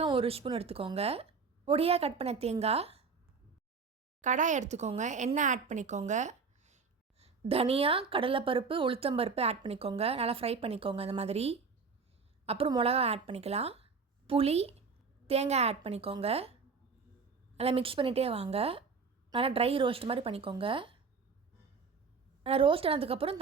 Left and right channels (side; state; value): left; quieter; 5.1 dB